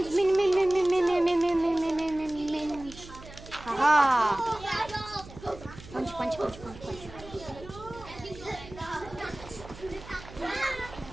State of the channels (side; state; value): right; noise; hum, 17 dB below the sound